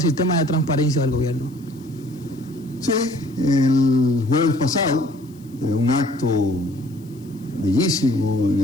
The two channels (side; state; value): left; noise; hiss, 29 dB below the sound